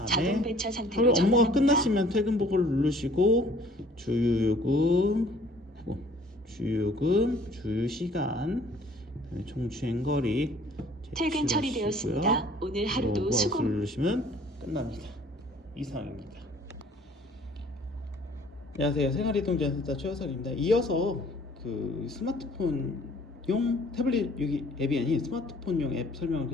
자동 배차 상태로 그리고 업무가 전환합니다. 끝나시면 퇴근 보고를 누르시고 주유요금, 주유시간, 그다음에 총 주행거리 퇴근 처리되었습니다. 오늘 하루도 수고. 누르시면 끝납니다. 이상입니다. 안녕하세요. 생활이동지원센터 최호석입니다. 이어서 그 스마트폰용 태블릿 여기 앱이 아닌 스마트폰용 앱 설명을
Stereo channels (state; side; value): normal; both; correlation 0.55